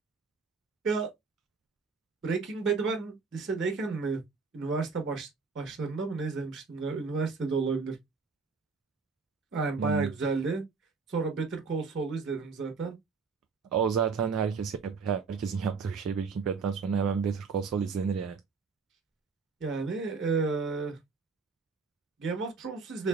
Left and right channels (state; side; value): quieter; left; 4.8 dB